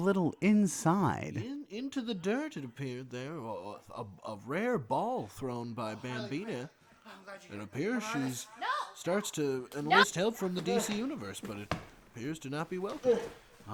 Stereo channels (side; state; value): both; identical; correlation 1.00